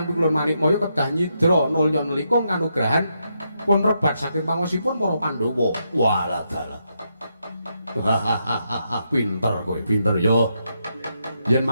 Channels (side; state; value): both; inverted; correlation -0.81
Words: Pikulun Manikmaya kedah nyidra nulya nelikung kanugrahan pun rebat saking pangosipun para Pandhawa. Walah dalah. Pinter kowe, pinter yo. Yen